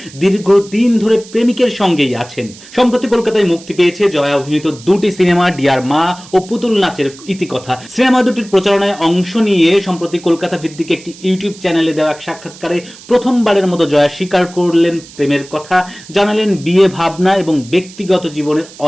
দীর্ঘদিন ধরে প্রেমিকের সঙ্গেই আছেন। সম্প্রতি কলকাতায় মুক্তি পেয়েছে জয়া অভিনীত দুটি সিনেমা ডিয়ার মা ও পুতুল নাচের ইতিকথা। সিনেমা দুটির প্রচারণায় অংশ নিয়ে সম্প্রতি কলকাতা ভিত্তিক একটি ইউটিউব চ্যানেলে দেওয়া এক সাক্ষাৎকারে প্রথমবারের মতো জয়া স্বীকার করলেন প্রেমের কথা, জানালেন বিয়ে ভাবনা এবং ব্যক্তিগত জীবনের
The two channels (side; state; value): right; noise; hiss, 20 dB below the sound